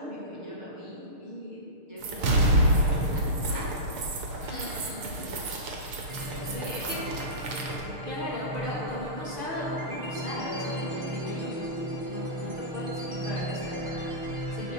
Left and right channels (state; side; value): late; left; 6.9 ms